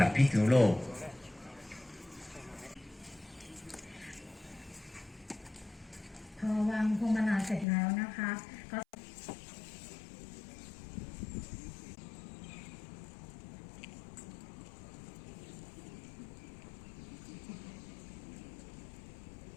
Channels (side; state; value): right; drops out; at 7.7 s